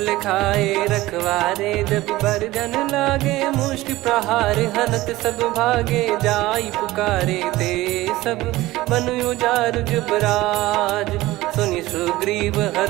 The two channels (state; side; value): quieter; left; 18.0 dB